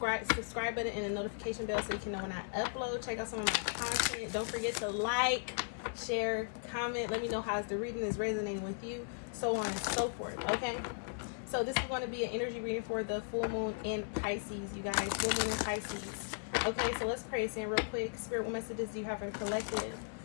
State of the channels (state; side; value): silent; right; 53 dB below the other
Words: button and the notification bell so you can know when I upload. Check out some of my content. Don't forget to like, share, comment. Let me know how the reading is resonating with you, so on and so forth. Okay, so this is going to be an energy reading for the full moon in Pisces, you guys. Full moon in Pisces. Okay, so let's pray in real quick. Spirit, what messages do you have for the collective?